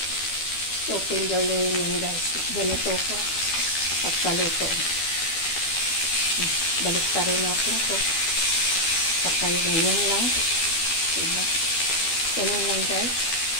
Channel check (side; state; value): right; late; 12 ms